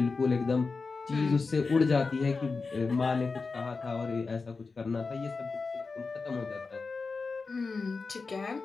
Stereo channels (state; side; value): quieter; right; 4.3 dB